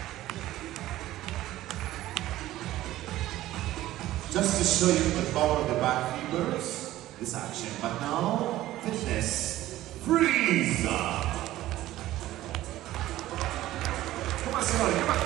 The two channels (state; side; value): quieter; left; 15.1 dB